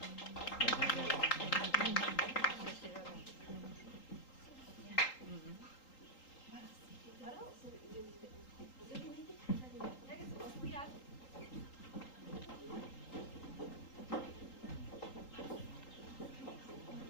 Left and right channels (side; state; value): right; late; 3.8 ms